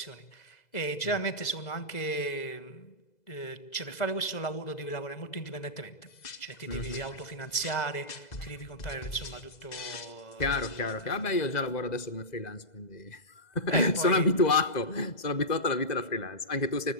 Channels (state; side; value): late; right; 2.0 ms